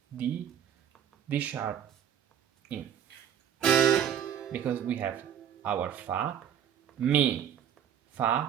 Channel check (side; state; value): left; quieter; 9.2 dB